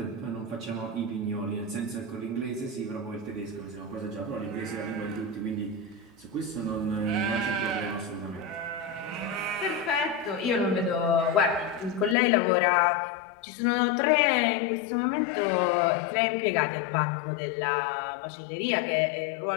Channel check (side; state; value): right; drops out; at 12.2 s